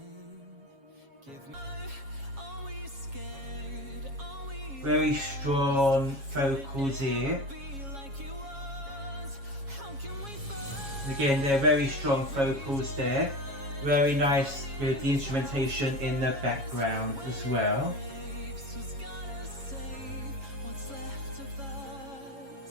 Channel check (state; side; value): late; left; 7.3 ms